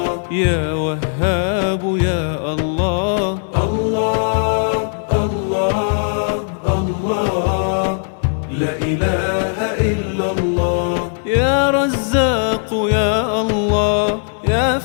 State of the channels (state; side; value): silent; right; digital silence